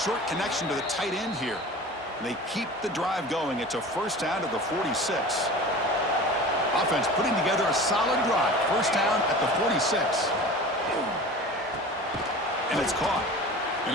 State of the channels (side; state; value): both; normal; correlation 0.37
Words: connection to the tight end here. They keep the drive going. It's a first down to the 46. Offense putting together a solid drive. First down at the 46. And it's caught. And